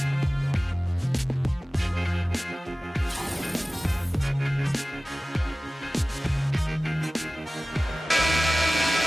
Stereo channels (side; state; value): both; normal; correlation 0.97